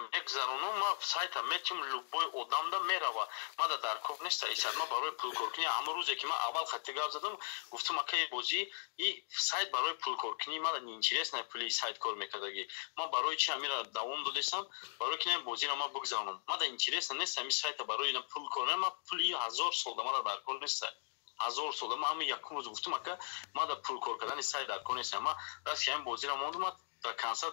ما سایت میتیم لوبای آدم دا میروه ما دا در کوب نیست ایساد ما برای پول کورکنی همه روزی که ما اول خطی گاف زدم گفتم که بازی این سایت برای پول کورکنی ما دا نینچیرس نه پولی سایت کار میکردگی ما برای چی همین را دوام دادستم برای که بازی را ما بگذرونم ما دا اینچیرس نیست همین سایت برای اینا پول کورنه ما پولی 1000 سال ما دا کار نیست 1000 سال ما همین یک روز گفتم که ما دا پول کار کردن سایت در کار نیست ما راست که این بازی را موندم تا کنسل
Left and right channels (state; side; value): silent; right; digital silence